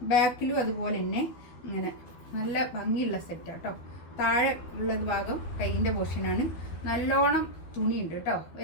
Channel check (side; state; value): right; late; 12 ms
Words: ബാക്കിലും അതുപോലെ തന്നെ ഇങ്ങനെ നല്ല ഭംഗിയുള്ള സെറ്റാണ് കേട്ടോ. താഴെ ഉള്ളത് ഭാഗം കൈയിൻ്റെ പോർഷനാണ്. നല്ലോണം തുണിയുണ്ട് കേട്ടോ.